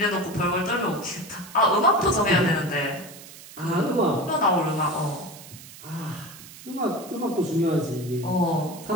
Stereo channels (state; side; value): noise; right; hiss, 17 dB below the sound